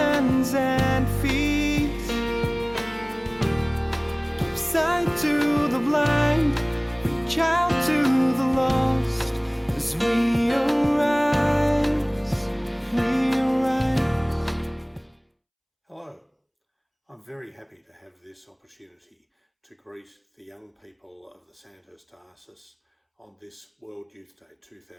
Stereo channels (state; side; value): identical; both; correlation 1.00